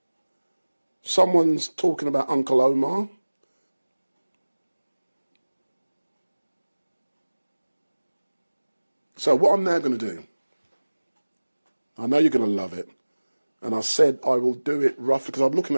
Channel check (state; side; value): inverted; both; correlation -1.00